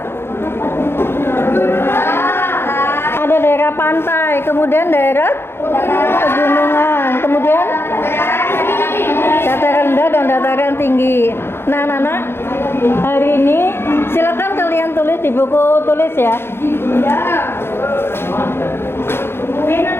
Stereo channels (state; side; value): late; right; 0.11 ms